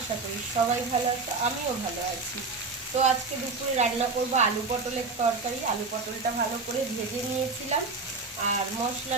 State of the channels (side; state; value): left; quieter; 4.1 dB